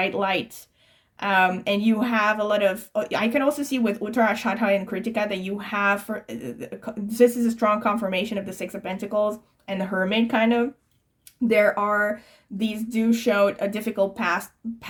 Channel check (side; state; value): both; identical; correlation 1.00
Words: light. And you have a lot of, I can also see with Uttara, Shadha, and Kritika that you have, for this is a strong confirmation of the Six of Pentacles and the Hermit, kind of. There are, these do show a difficult path,